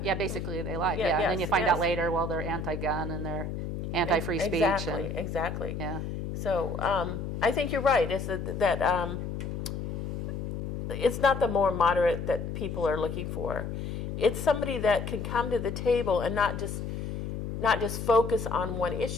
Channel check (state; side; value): noise; left; hum, 5 dB below the sound